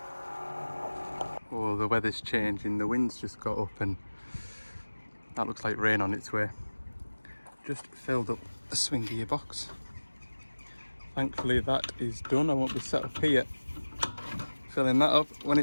Oh, the weather's changing, the wind's just got up and that looks like rain on its way. Just filled up a swing gearbox. Thankfully that is done, I won't be sat up here filling that up when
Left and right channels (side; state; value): both; inverted; correlation -1.00